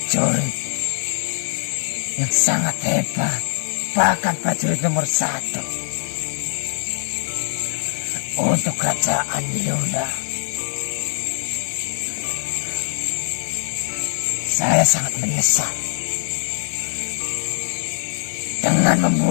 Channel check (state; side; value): silent; right; digital silence